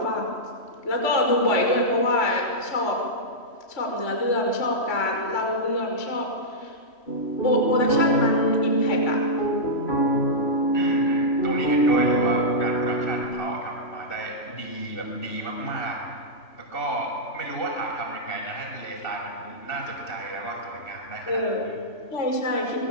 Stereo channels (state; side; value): late; right; 3.1 ms